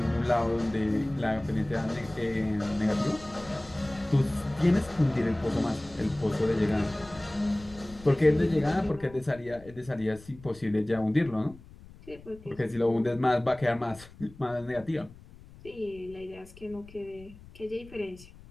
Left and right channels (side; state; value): left; noise; rumble, 20 dB below the sound